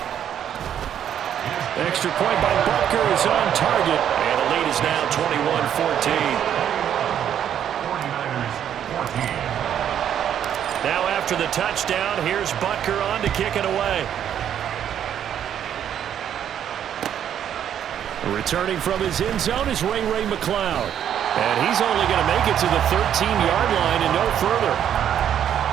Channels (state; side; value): quieter; left; 9.6 dB